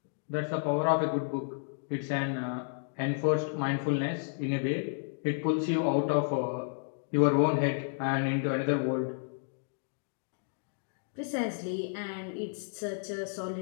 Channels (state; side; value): silent; right; digital silence